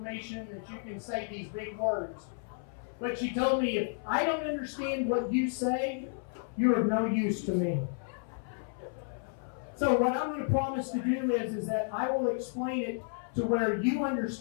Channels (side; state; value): right; silent; 56 dB below the other